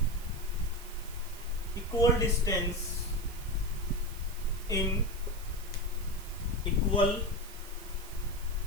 equal distance in equal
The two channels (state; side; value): noise; right; hiss, 16 dB below the sound